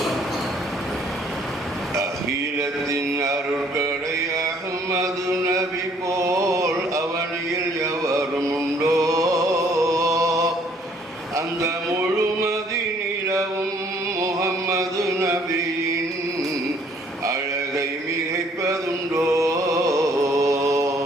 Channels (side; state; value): both; normal; correlation 0.62